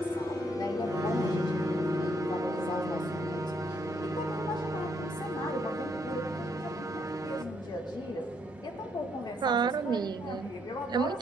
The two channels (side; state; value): both; normal; correlation 0.73